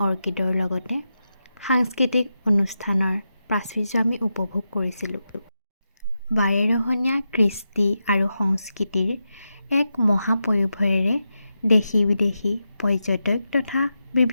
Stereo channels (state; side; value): inverted; both; correlation -0.88